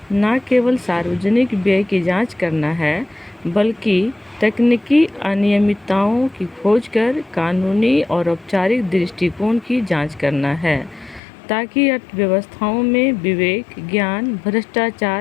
न केवल सार्वजनिक व्यय की जांच करना है, बल्कि तकनीकी अनियमितताओं की खोज कर कानूनी और औपचारिक दृष्टिकोण की जांच करना है, ताकि अर्थव्यवस्थाओं में विवेक, ज्ञान,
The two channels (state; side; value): drops out; right; at 11.2 s